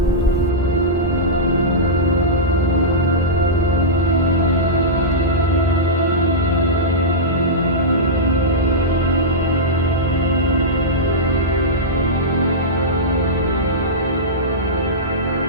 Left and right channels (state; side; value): normal; both; correlation -0.14